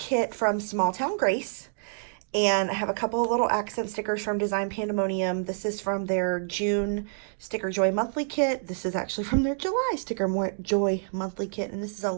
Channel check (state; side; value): silent; left; digital silence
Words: from Small Town Grace, and I have a couple of little accent stickers from Design Pandemonium. This is from their June Sticker Joy monthly kit. This is actually from their July Sticker Joy monthly kit, and this is a